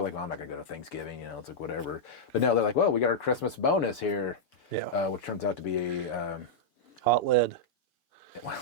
like, well, I'm not going to go to Thanksgiving, it's like whatever. But no, they're like, well, we got our Christmas bonus here. Yeah. Which turns out to be a... hot lead. Well,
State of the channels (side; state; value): right; late; 4.6 ms